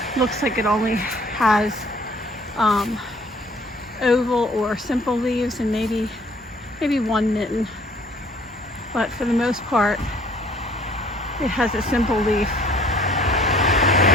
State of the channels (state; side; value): normal; both; correlation 0.56